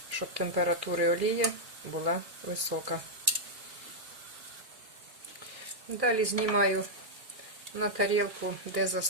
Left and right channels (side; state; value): left; late; 2.4 ms